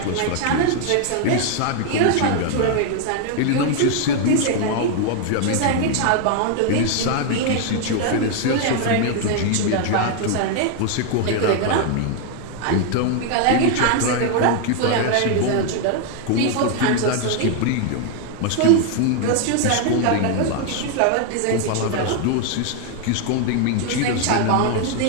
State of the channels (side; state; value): both; different; correlation 0.00